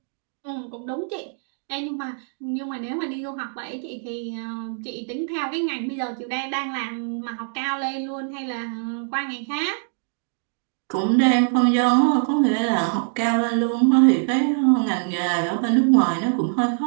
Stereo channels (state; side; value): silent; left; digital silence